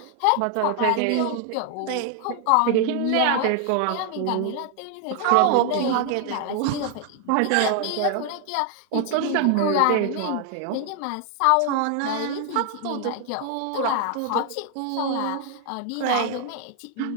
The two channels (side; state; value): both; different; correlation 0.00